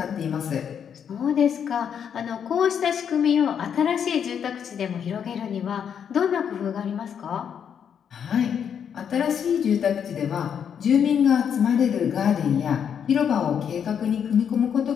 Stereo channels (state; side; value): quieter; right; 8.0 dB